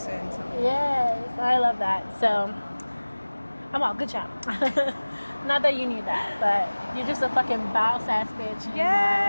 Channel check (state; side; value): inverted; both; correlation -1.00